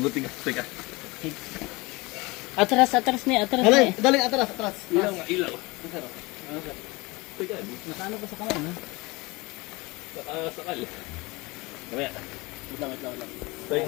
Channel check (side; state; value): right; quieter; 23.9 dB